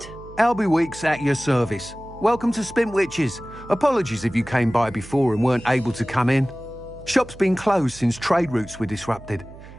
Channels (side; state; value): right; noise; hum, 18 dB below the sound